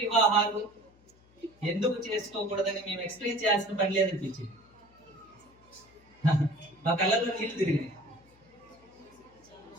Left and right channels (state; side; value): noise; left; hum, 29 dB below the sound